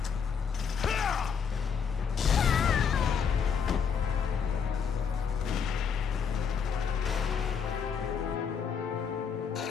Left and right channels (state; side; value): quieter; right; 6.6 dB